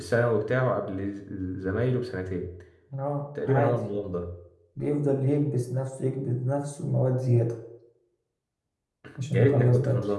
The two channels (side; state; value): both; identical; correlation 1.00